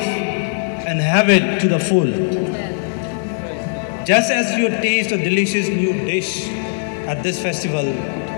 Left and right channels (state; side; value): silent; right; digital silence